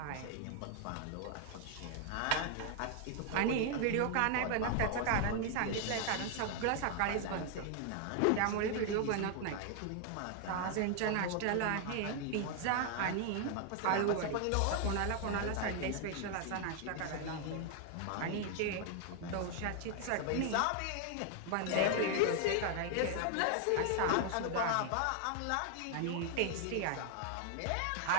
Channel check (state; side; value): different; both; correlation 0.00